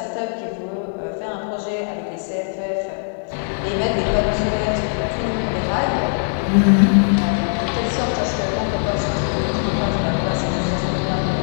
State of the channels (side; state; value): right; silent; digital silence